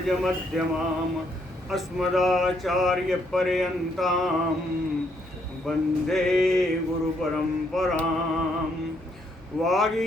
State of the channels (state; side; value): normal; both; correlation 0.72